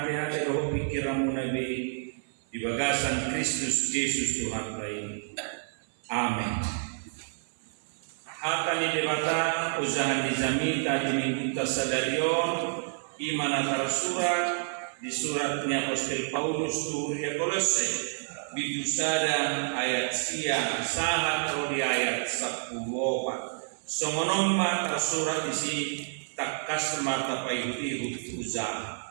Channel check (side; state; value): left; silent; 57 dB below the other